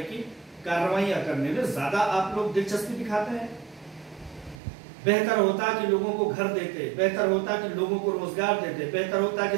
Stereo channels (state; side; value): drops out; left; at 4.6 s